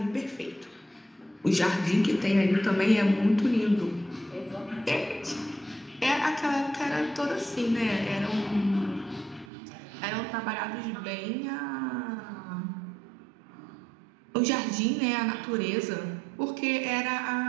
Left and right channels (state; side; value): drops out; left; at 9.5 s